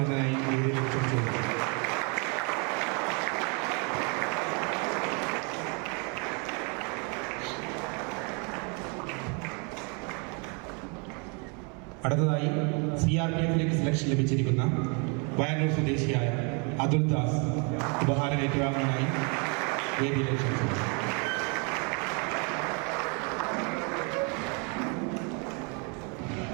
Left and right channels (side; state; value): left; quieter; 34.5 dB